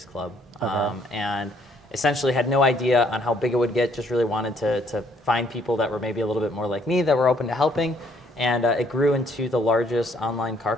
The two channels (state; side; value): normal; both; correlation 0.65